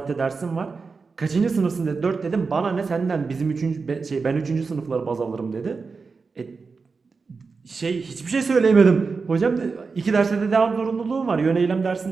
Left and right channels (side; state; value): left; quieter; 4.6 dB